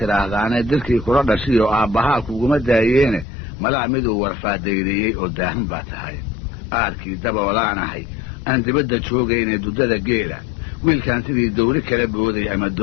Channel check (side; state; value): right; drops out; at 3.2 s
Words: dilkii kula dhashiyo aabbahaa kuguma daayeene malaa miduu warfaadayriyey oo daahan baa tahay aarkii daboolaanahay aan dibadda joogayne duddada geela wiilkan sidii dawri kala booday ama